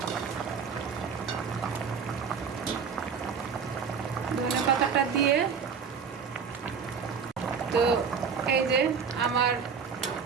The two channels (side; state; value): left; quieter; 6.3 dB